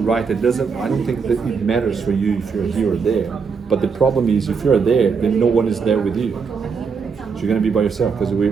write it. I don't think that it matters for you if you're here or there. But the problem is if you're there, then no one is there with you. So you're gonna be by yourself because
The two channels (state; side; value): quieter; left; 5.6 dB